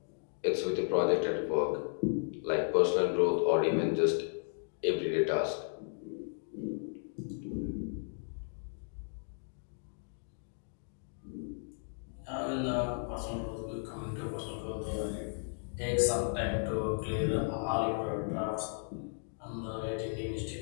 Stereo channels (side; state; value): right; silent; digital silence